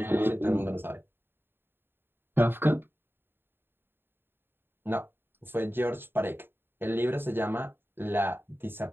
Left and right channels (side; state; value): left; late; 0.10 ms